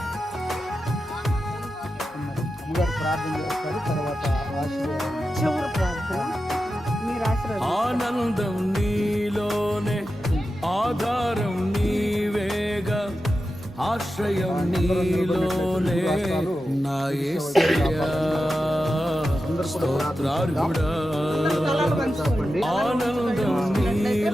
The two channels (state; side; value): normal; both; correlation 0.91